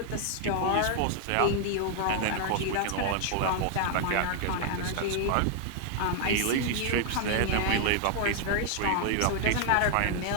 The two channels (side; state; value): both; different; correlation 0.00